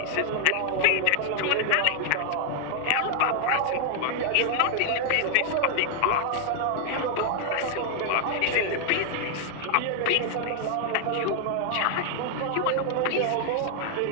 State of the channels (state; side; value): different; both; correlation 0.00